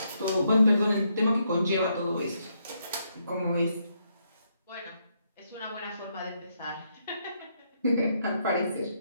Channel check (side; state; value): both; inverted; correlation -0.77